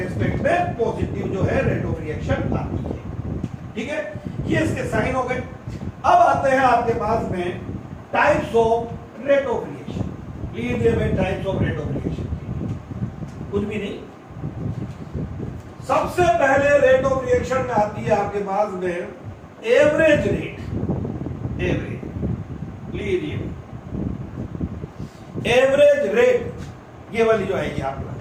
में पॉजिटिव जो है रेट ऑफ रिएक्शन आती है. ठीक है, ये इसके साइन हो गए. अब आते हैं आपके पास में types of rate of reaction. लीजिए भाई, types of rate of reaction कुछ भी नहीं. सबसे पहले रेट ऑफ रिएक्शन में आती है आपके पास में एवरेज रेट. एवरेज लीजिए, एवरेज रेट ये वाली जो आएगी आपके पास,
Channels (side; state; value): both; identical; correlation 1.00